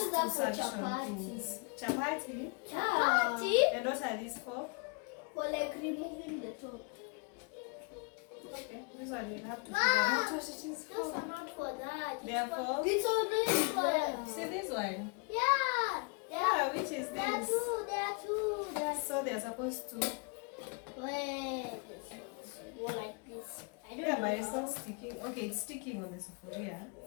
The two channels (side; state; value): right; quieter; 33.9 dB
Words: use that two for suction chapati. things. Chapati. Chapati? And what are these for? For like removing the top. Okay, this one we'll have to figure out what it is Those for. are not for that. Therefore, It's only for. see this one. Yeah. Yeah, which is There are this? two. There are two. There are So they're supposed to. Wait, this one's more like this. I don't Yeah, know. but it's not sticking. Okay, it's sticking on the sufuria.